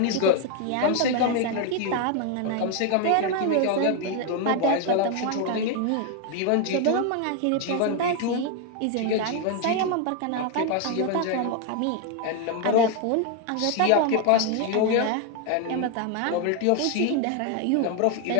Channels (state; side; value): different; both; correlation 0.01